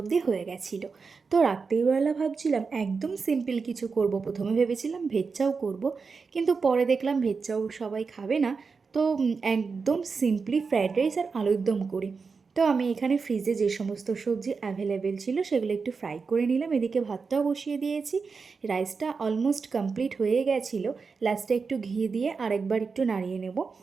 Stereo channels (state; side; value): quieter; left; 4.9 dB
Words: দিয়ে হয়ে গেছিলো। তো রাত্রিবেলা ভাবছিলাম একদম সিম্পল কিছু করব। প্রথমে ভেবেছিলাম ভেজ চাউ করব, কিন্তু পরে দেখলাম ভেজ চাউ সবাই খাবে না। তো একদম সিম্পলি ফ্রায়েড রাইস আর আলুর দম করি। তো আমি এখানে ফ্রিজে যে সমস্ত সবজি অ্যাভেলেবেল ছিল সেগুলো একটু ফ্রাই করে নিলাম, এদিকে ভাতটাও বসিয়ে দিয়েছি। রাইসটা অলমোস্ট কমপ্লিট হয়ে গেছিলো। লাস্টে একটু ঘি দিয়ে আরেকবার একটু নাড়িয়ে নেব,